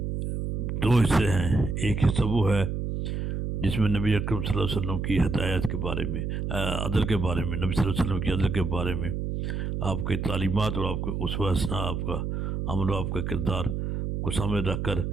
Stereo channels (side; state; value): right; noise; hum, 2 dB below the sound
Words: دو حصے ہیں۔ ایک حصہ وہ ہے جس میں نبی اکرم صلی اللہ علیہ وسلم کی ہدایت کے بارے میں، عدل کے بارے میں، نبی صلی اللہ علیہ وسلم کی عدل کے بارے میں آپ کی تعلیمات اور آپ کے اسوہ حسنہ، آپ کا عمل و آپ کا کردار کو سامنے رکھ کر